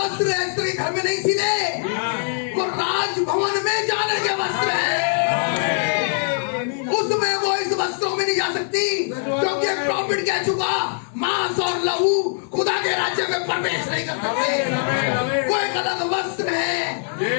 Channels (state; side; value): silent; right; digital silence